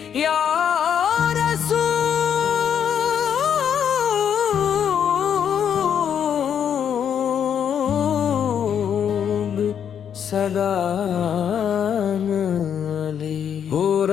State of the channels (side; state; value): right; quieter; 8.5 dB